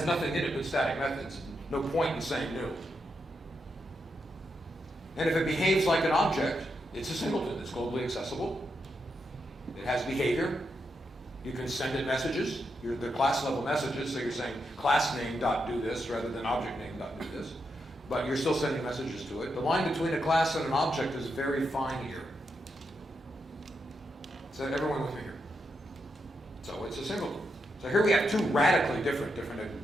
nothing in it but static methods. No point in saying new. And if it behaves like an object, it's a singleton. It's globally accessible. It has behavior. You can send it messages. They're class level messages, so you're saying class name dot do this rather than object name dot do this. But you're still sending messages to it. The line between a class and an object is very fine here. So everyone with me here? So it's a singleton. So here we have two radically different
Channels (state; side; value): normal; both; correlation 0.83